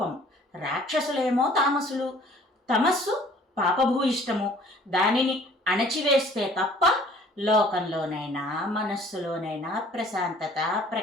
రాక్షసులేమో తామసులు, తమస్సు పాపభూయిష్టము. దానిని అణచివేస్తే తప్ప లోకంలోనైనా మనస్సులోనైనా ప్రశాంతత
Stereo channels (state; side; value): normal; both; correlation 0.53